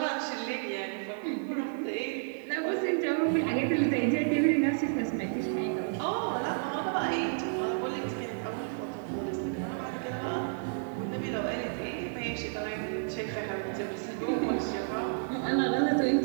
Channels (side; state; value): left; silent; digital silence